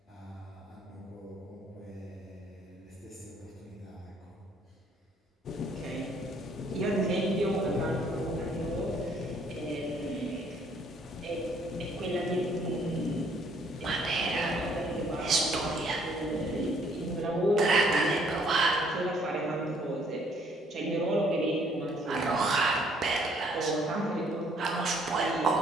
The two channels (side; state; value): both; normal; correlation 0.64